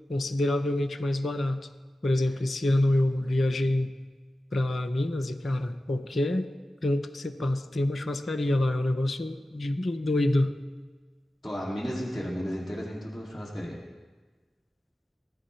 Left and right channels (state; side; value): normal; both; correlation 0.94